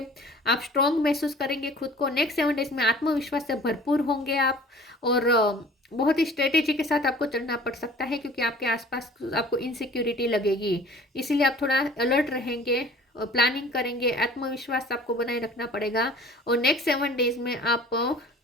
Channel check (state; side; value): normal; both; correlation 0.47